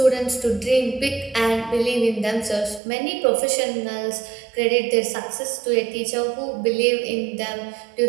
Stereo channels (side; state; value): left; drops out; at 2.8 s